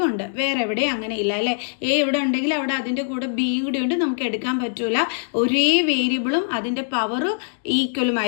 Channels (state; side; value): silent; right; digital silence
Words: ഉണ്ട്. വേറെ എവിടെയും അങ്ങനെ ഇല്ല അല്ലേ? എ ഇവിടെ ഉണ്ടെങ്കിൽ അവിടെ അതിൻ്റെ കൂടെ ബിയും കൂടി ഉണ്ട്, നമുക്ക് എടുക്കാൻ പറ്റൂല. ഒരേ വേരിയബിളും അതിൻ്റെ പവർ ഈക്വലും